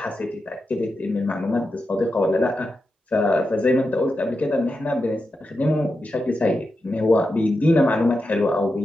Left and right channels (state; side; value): normal; both; correlation 0.89